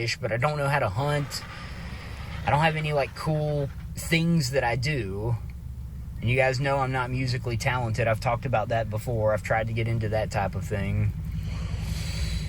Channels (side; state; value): both; identical; correlation 1.00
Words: but I don't know how to hunt. I don't have any, cool things that I do. And you guys know I'm not musically talented. I've talked about that before. I've tried to get into that type of thing.